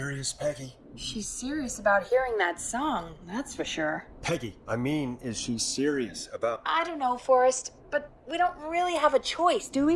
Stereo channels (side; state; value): both; identical; correlation 1.00